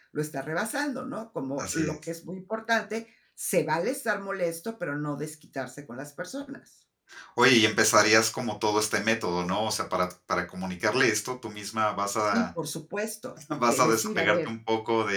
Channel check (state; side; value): identical; both; correlation 1.00